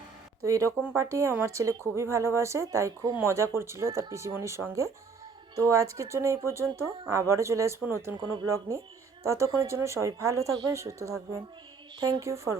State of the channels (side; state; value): left; quieter; 5.1 dB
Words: তো এরকম পার্টি আমার ছেলে খুবই ভালোবাসে, তাই খুব মজা করছিল তার পিসিমণির সঙ্গে। তো আজকের জন্য এই পর্যন্ত, আবারও চলে আসবো নতুন কোনো ব্লগ নিয়ে। ততক্ষণের জন্য সবাই ভালো থাকবেন, সুস্থ থাকবেন। Thank you for